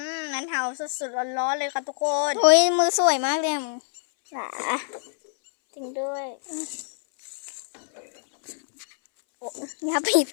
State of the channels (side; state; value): right; silent; 62 dB below the other